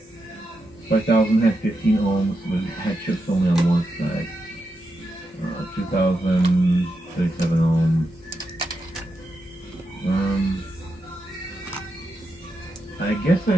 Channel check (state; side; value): normal; both; correlation 0.86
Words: 5,000 had 15 ohms, but it had chips only on one side. 2,000, 37 ohms. I guess I